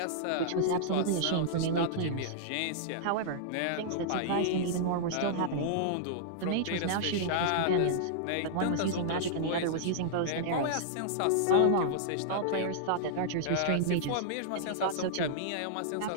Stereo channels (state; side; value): different; both; correlation -0.02